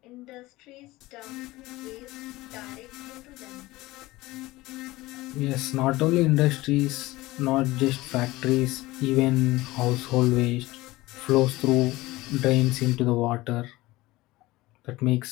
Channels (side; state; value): right; quieter; 19.3 dB